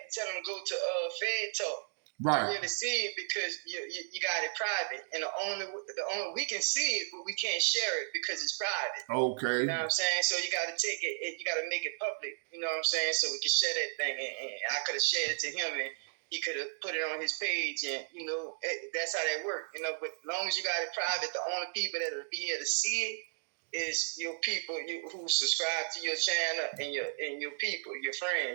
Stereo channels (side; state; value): left; silent; digital silence